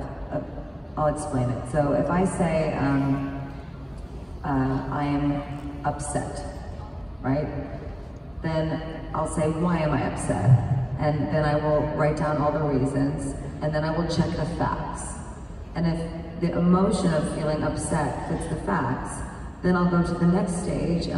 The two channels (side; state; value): both; identical; correlation 1.00